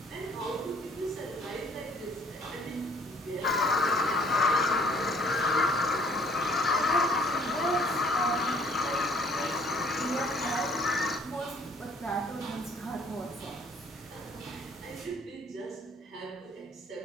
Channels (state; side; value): normal; both; correlation 0.58